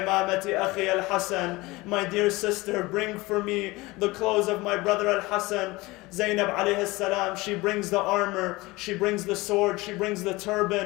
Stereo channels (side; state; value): right; quieter; 21.6 dB